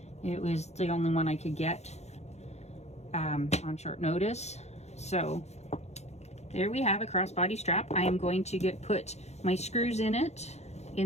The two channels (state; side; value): late; right; 0.32 ms